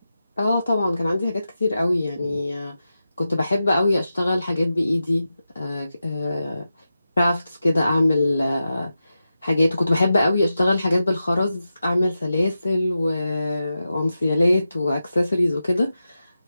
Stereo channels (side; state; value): both; inverted; correlation -0.91